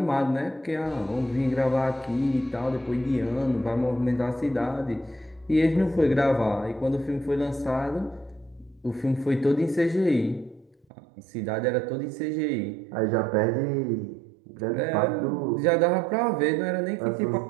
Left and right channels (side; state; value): left; drops out; at 10.9 s